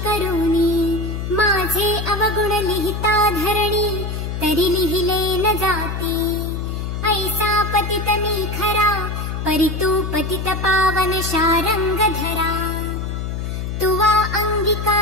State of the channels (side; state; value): left; noise; hum, 4 dB below the sound